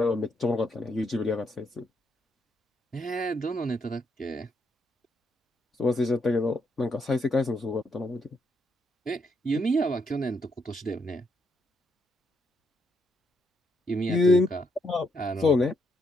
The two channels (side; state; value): both; normal; correlation 0.76